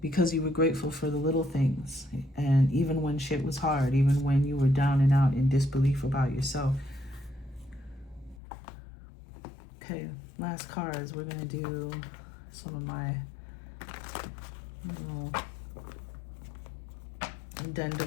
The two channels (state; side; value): drops out; right; at 8.4 s